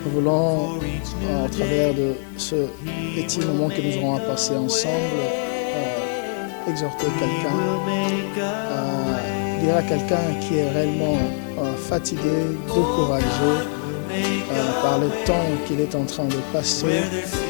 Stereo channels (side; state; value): right; silent; 64 dB below the other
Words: Nous voulons, au travers de ce petit moment que nous aurons à passer ensemble, exhorter quelqu'un, dire à quelqu'un qui est réellement fatigué, découragé par le temps qu'il est en train de passer.